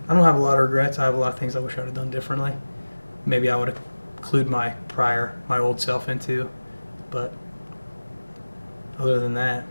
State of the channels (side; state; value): both; inverted; correlation -1.00